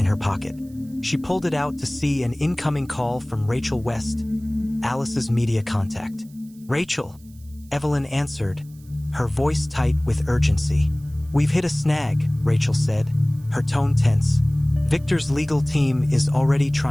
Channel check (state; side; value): noise; right; hiss, 28 dB below the sound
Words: her pocket. She pulled it out to see an incoming call from Rachel West, Alice's media contact. "Rachel," Evelyn answered, her voice tight with urgency. "We've hit a snag," Rachel said, her tone tense. "Victor's legal team is already